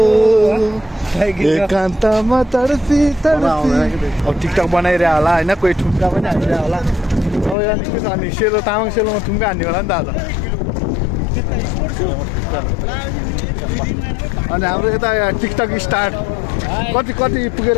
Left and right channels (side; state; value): right; drops out; at 7.6 s